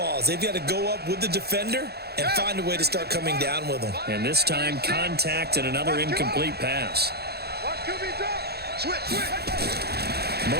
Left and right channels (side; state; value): left; late; 0.47 ms